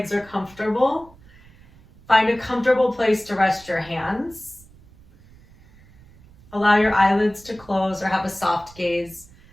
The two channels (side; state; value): right; noise; rumble, 25 dB below the sound